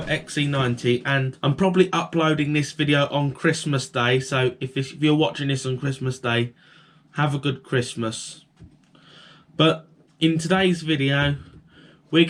XC90, and I'm probably uploading this video on Christmas Day, so if you're watching this on Christmas Day, have a good Christmas. But in today's video, we're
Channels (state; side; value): identical; both; correlation 1.00